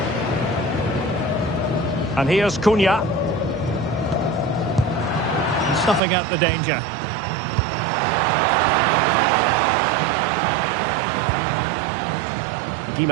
And here's Cunha. And snuffing out the danger.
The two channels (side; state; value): left; drops out; at 6.0 s